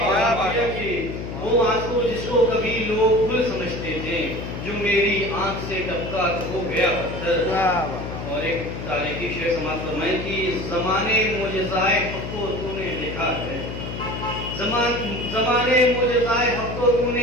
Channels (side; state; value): left; noise; hum, 7 dB below the sound